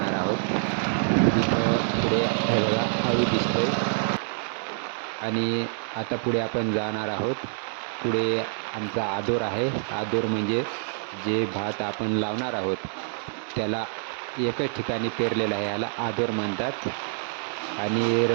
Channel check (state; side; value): silent; left; 61 dB below the other